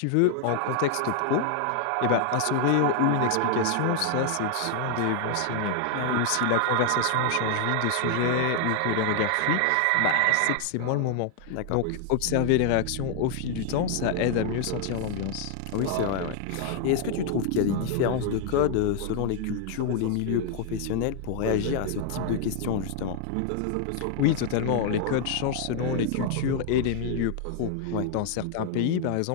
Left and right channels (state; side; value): different; both; correlation 0.00